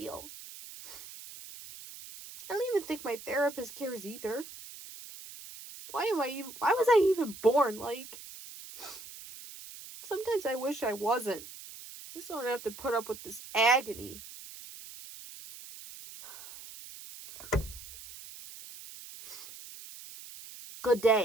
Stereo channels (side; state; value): right; noise; hiss, 15 dB below the sound